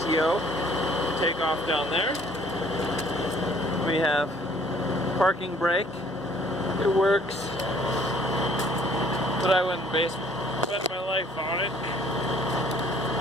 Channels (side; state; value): both; normal; correlation 0.58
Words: PTO. Take off down there. We have parking brake. It works, but I wouldn't bet my life on it.